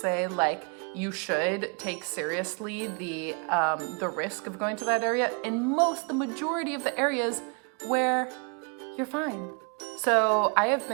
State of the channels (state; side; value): quieter; left; 34.9 dB